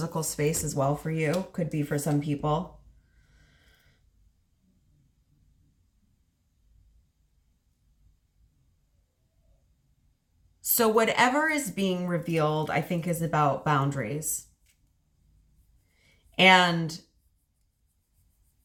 space as well for you. Could be for some people. So whatever is being revealed, I think, is about boundaries. And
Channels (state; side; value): identical; both; correlation 1.00